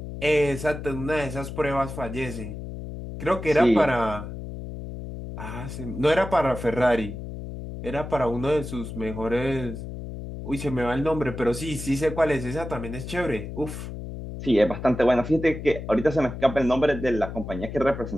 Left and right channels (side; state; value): left; noise; hum, 9 dB below the sound